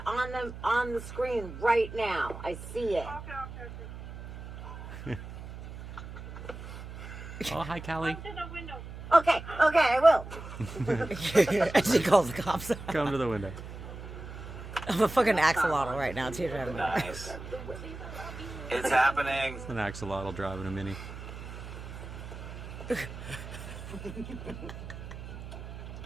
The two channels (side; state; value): right; noise; hum, 11 dB below the sound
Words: on the screen right now. I see it. Okay. Oh, hi, Callie. Come to the window. Okay, I will. She calls the cops. Come to the window. I'm a fucking axolotl right now, too. Nice. It's happening. An axolotl driving a mini.